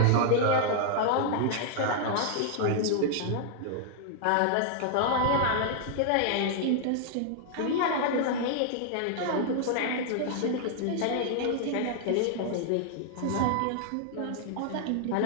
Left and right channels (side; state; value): both; different; correlation -0.01